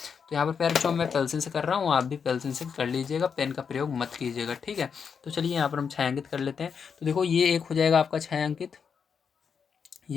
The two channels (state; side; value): quieter; right; 6.5 dB